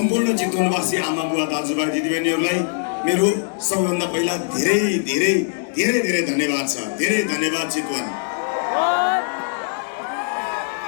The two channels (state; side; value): silent; right; digital silence